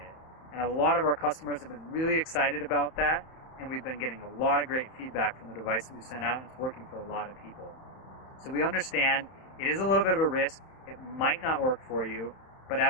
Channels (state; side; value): late; right; 31 ms